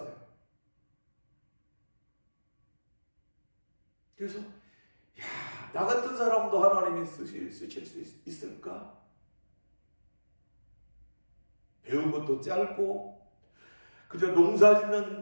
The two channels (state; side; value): inverted; both; correlation -1.00